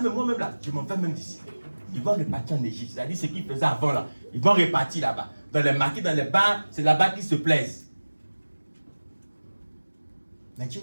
moi-même là, je m'en vais même d'ici. Ils vont repartir en Égypte. C'est-à-dire ce qu'ils faisaient avant là. Ils vont repartir là-bas. Dans les marqués, dans les bars, c'est là-bas qu'ils se plaisent. Mais Dieu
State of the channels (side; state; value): both; inverted; correlation -1.00